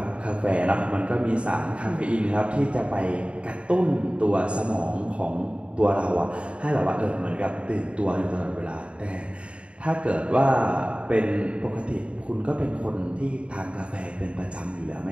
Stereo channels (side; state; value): left; late; 0.059 ms